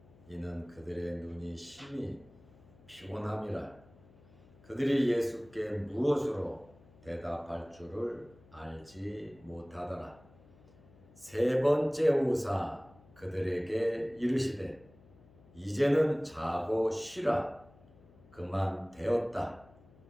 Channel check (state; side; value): noise; left; hum, 25 dB below the sound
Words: 이는 그들의 눈이 심히 피곤함이라. 그들이 예수께 무엇으로 대답할 줄을 알지 못하더라. 세 번째 오사 그들에게 이르시되 이제는 자고 쉬라. 그만 되었다.